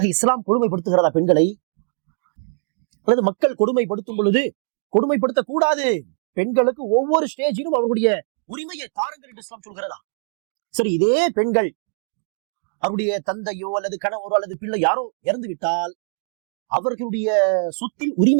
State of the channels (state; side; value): silent; left; digital silence